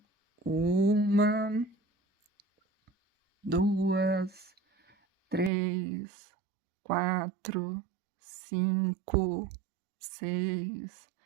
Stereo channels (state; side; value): drops out; left; at 5.5 s